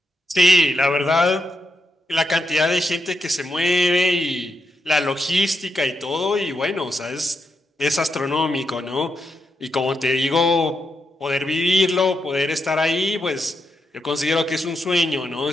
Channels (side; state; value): both; normal; correlation 0.83